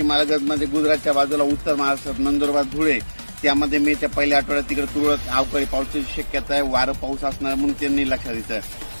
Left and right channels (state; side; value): inverted; both; correlation -1.00